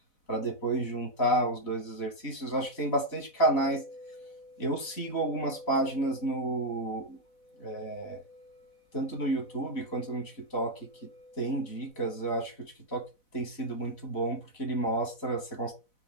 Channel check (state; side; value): late; right; 4.0 ms